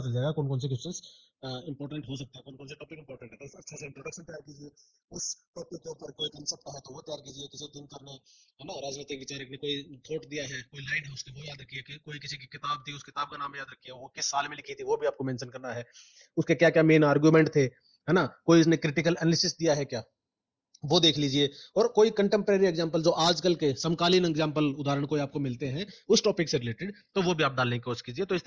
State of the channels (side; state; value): both; identical; correlation 1.00